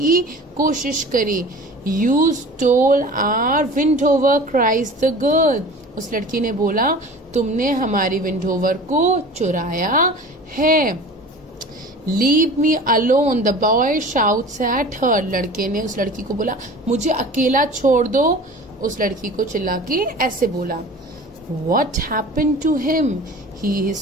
कोशिश करी। You stole our Windhover, cries the girl. उस लड़की ने बोला, तुमने हमारी विंडोवर को चुराया है. Leave me alone, the boy shouts at her. लड़के ने उस लड़की को बोला, मुझे अकेला छोड़ दो. उस लड़की को चिल्ला के ऐसे बोला. What happened to him? He is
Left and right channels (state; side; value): normal; both; correlation 0.40